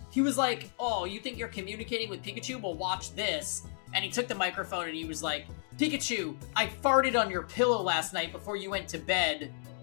he was like, oh, you think you're communicating with Pikachu? Well, watch this. And he took the microphone and he was like, Pikachu, I farted on your pillow last night before you went to bed.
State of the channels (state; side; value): silent; right; digital silence